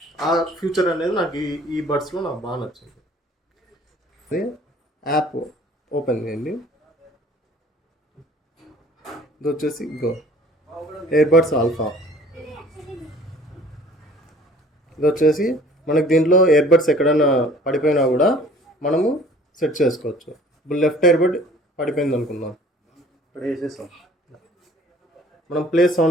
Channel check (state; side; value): normal; both; correlation 0.51